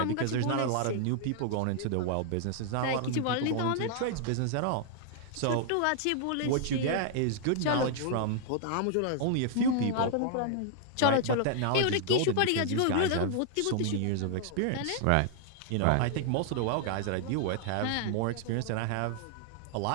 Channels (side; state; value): both; different; correlation 0.00